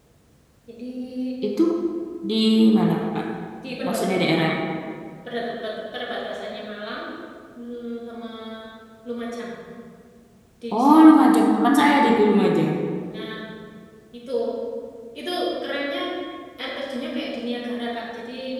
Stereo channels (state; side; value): identical; both; correlation 1.00